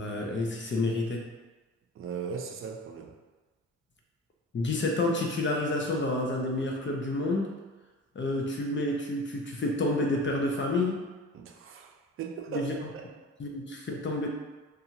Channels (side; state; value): both; normal; correlation 0.38